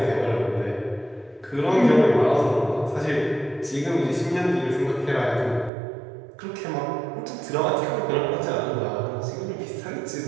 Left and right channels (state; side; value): drops out; left; at 5.7 s